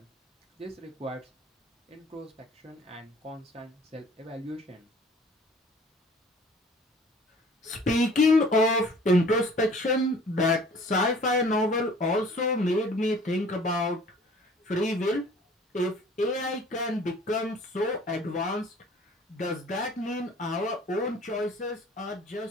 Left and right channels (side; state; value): both; normal; correlation 0.51